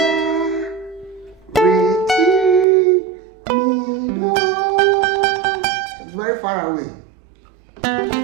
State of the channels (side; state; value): left; drops out; at 2.7 s